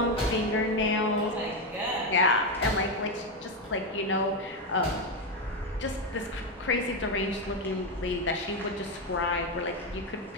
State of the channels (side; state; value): both; normal; correlation 0.08